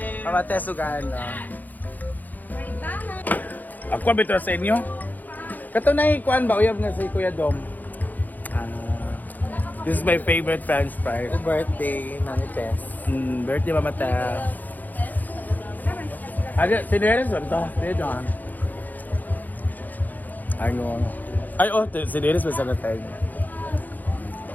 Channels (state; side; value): late; right; 0.083 ms